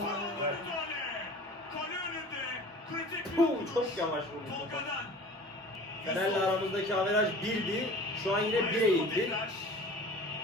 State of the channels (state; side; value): normal; both; correlation 0.42